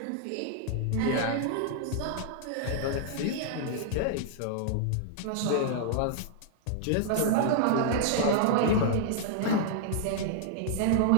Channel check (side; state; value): both; different; correlation -0.01